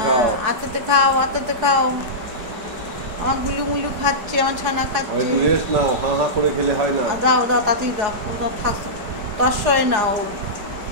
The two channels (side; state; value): left; late; 4.8 ms